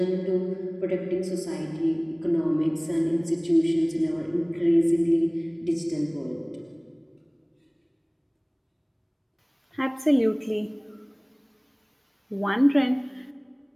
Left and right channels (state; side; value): identical; both; correlation 1.00